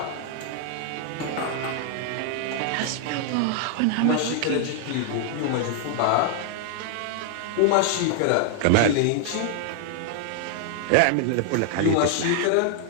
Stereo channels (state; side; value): different; both; correlation 0.00